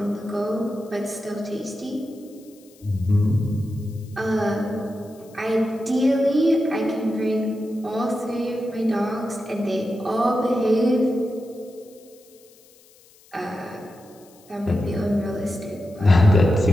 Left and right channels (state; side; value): noise; left; hiss, 28 dB below the sound